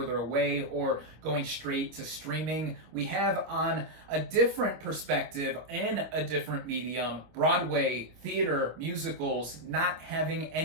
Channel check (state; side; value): late; left; 25 ms